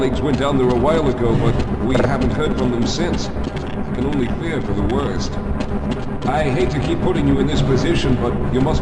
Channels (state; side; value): identical; both; correlation 1.00